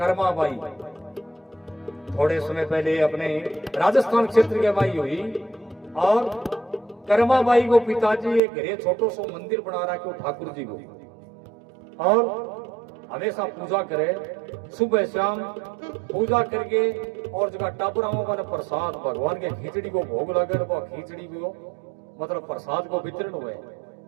बाई थोड़े समय पहले अपने राजस्थान क्षेत्र के बाई हुई और कर्मा बाई को पिताजी एक घरे छोटो सो मंदिर बना रहा क्यों ठाकुर जी को, और हमेशा पूजा करे सुबह शाम पूजा करके और जगह टापुराओं का प्रसाद भगवान के खिचड़ी को भोग लगे वो खिचड़ी को मतलब प्रसाद को वितरण हुए।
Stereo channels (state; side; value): drops out; left; at 8.4 s